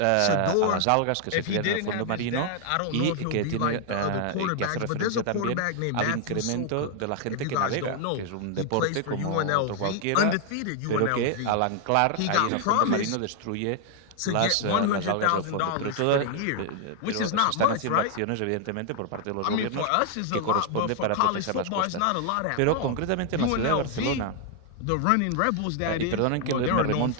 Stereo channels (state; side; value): different; both; correlation 0.00